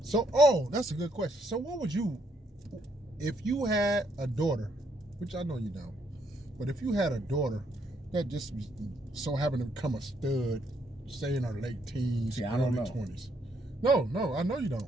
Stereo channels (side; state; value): both; normal; correlation 0.72